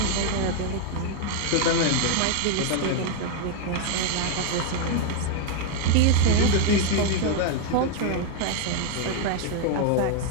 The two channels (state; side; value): different; both; correlation 0.01